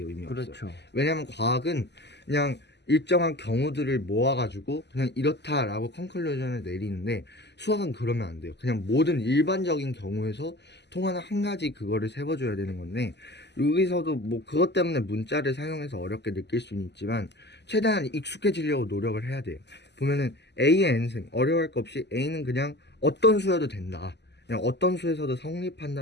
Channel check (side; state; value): right; late; 0.50 ms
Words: 의미 없어요. 그렇죠. 왜냐면 과학은 그냥 일정한 경우들을 모아가지고 그냥 이렇다라고 컨클루전을 내리는데 수학은 그러면 안 돼요. 그냥 모든 일반적인 경우에서 통하는 한 가지 그거를 세워줘야 되는 건데 여기서도 뭐 그것 때문에 문자를 사용해서 어렵게 느낄 수는 있지만 최대한 익숙해지려고 노력을 해야 돼요. 보면은 A의 n승 어려워할 거 없이 A는 그냥 어떤 수여도 된다. 그냥 어떤 수에서도